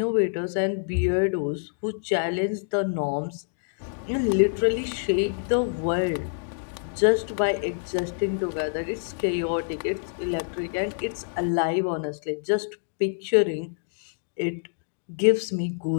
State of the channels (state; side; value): silent; right; digital silence